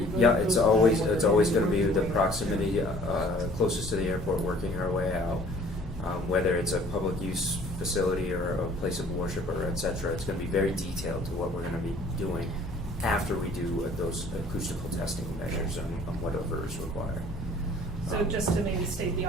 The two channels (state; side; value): normal; both; correlation 0.52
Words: yeah, it's always going to be the proximity closest to the airport, working our way out. Whether it's a public use facility or a place of worship or et cetera, it's going to be very detailed to what we're going to be doing after we do those acoustical testing measures on whatever is required. So just to maybe state the